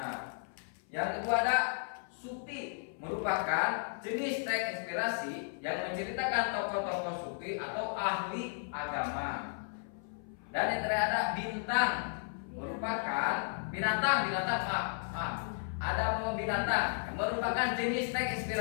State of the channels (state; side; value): silent; right; 55 dB below the other